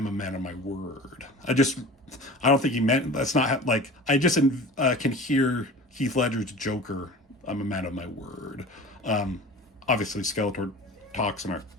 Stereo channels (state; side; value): normal; both; correlation 0.39